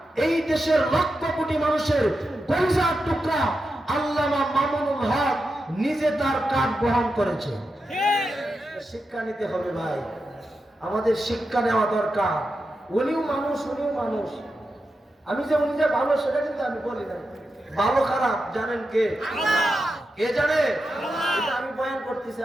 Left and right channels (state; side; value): normal; both; correlation 0.88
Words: এই দেশের লক্ষ কোটি মানুষের কলিজার টুকরা আল্লামা মামুনুল হক নিজে তার কাঠ বহন করেছে। শিক্ষা নিতে হবে ভাই, আমাদের শিক্ষা নেওয়া দরকার। উনিও মানুষ, উনিও মানুষ। আমি যে উনি যে ভালো সেটা কিন্তু আমি বলি না, ভালো খারাপ জানেন কে? কে জানে? এটা আমি বয়ান করতেছি,